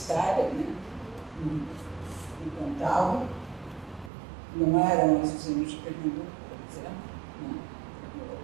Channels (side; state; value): left; drops out; at 4.1 s